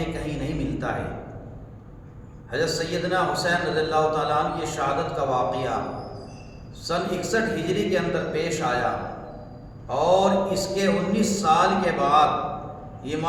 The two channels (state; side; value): identical; both; correlation 1.00